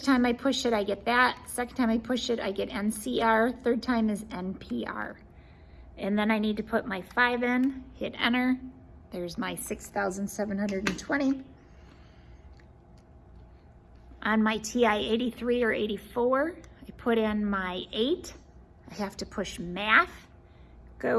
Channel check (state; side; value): identical; both; correlation 1.00